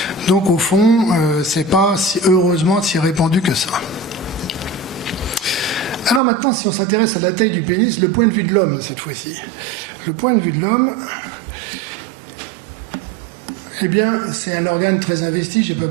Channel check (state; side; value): drops out; left; at 6.2 s